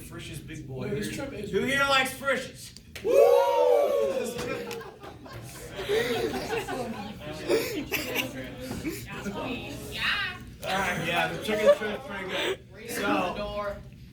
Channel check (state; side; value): identical; both; correlation 1.00